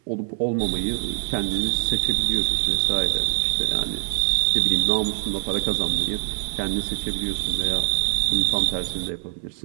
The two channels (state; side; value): silent; left; 63 dB below the other